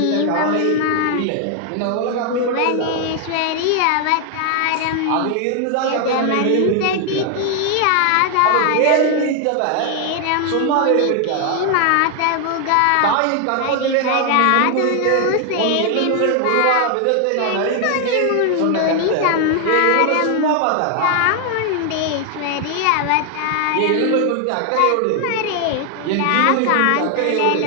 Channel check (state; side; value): different; both; correlation 0.00